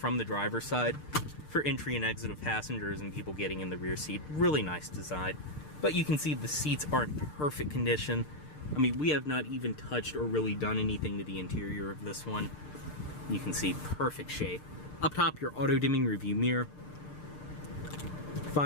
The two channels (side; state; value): right; late; 6.7 ms